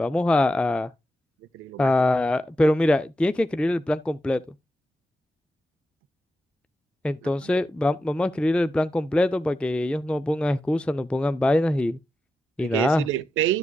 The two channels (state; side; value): normal; both; correlation 0.89